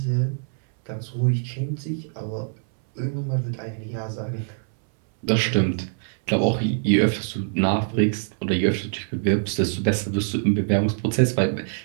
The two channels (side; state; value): left; silent; 63 dB below the other